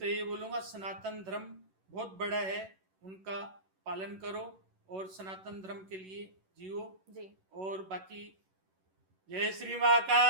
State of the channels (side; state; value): left; late; 11 ms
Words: ये बोलूंगा सनातन धर्म बहुत बड़ा है, उनका पालन करो और सनातन धर्म के लिए जियो। जी, और बाकी जय श्री